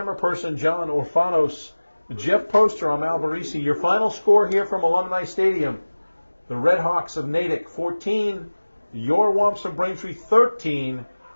person, John Orfanos, Jeff Poster, I'm Al Barisi. Your final score here from Alumni Stadium. The Red Hawks of Natick 14, your Womps of Braintree 13.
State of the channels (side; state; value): both; inverted; correlation -1.00